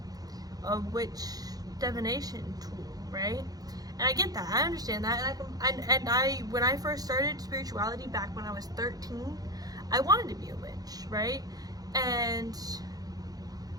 witch divination tool, right? And I get that, I understand that, and I when I first started spirituality back when I was 13, I wanted to be a witch, right? And,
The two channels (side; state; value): left; late; 0.18 ms